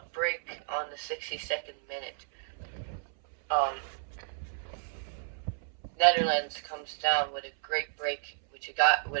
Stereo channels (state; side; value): silent; left; 56 dB below the other